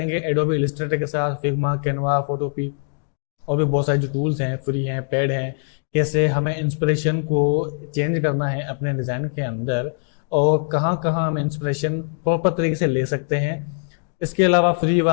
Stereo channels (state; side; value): silent; right; 61 dB below the other